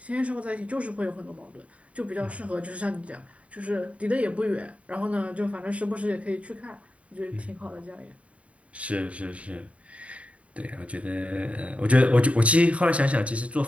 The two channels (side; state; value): left; late; 0.065 ms